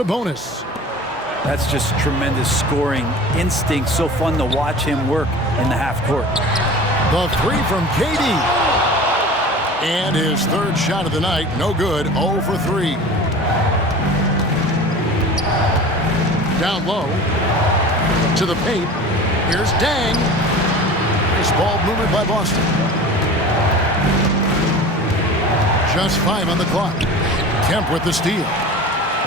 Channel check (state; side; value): normal; both; correlation 0.38